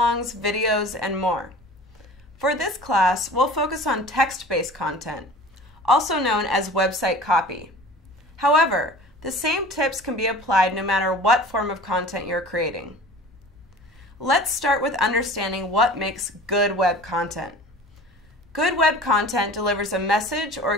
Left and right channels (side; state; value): both; normal; correlation 0.41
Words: videos, and more. For this class, we'll focus on text-based content, also known as website copy. However, the same tips can be applied no matter what form of content you're creating. Let's start with understanding what makes good web content. Good web content delivers a message or